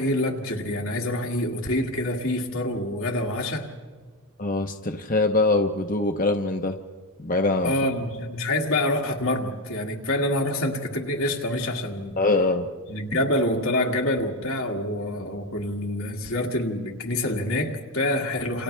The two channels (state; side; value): normal; both; correlation 0.13